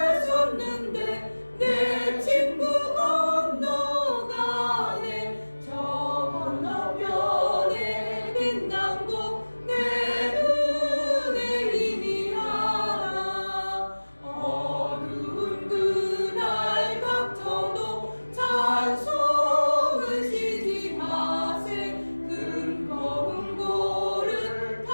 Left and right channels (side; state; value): both; inverted; correlation -1.00